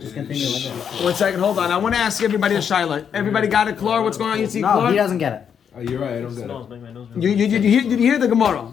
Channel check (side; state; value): right; quieter; 7.8 dB